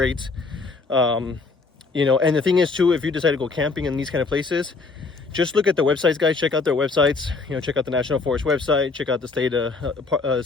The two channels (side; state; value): right; quieter; 4.1 dB